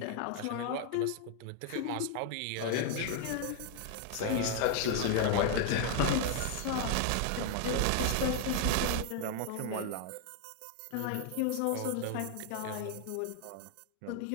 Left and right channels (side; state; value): both; different; correlation 0.00